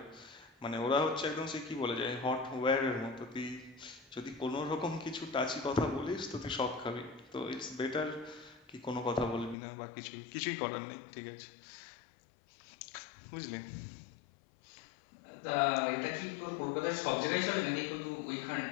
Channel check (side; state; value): right; drops out; at 9.6 s